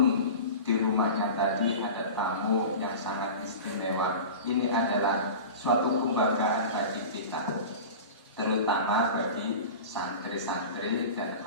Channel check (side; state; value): both; inverted; correlation -0.33